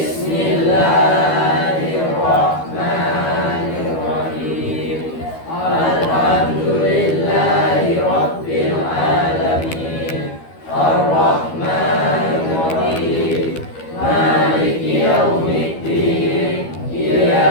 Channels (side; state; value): right; late; 12 ms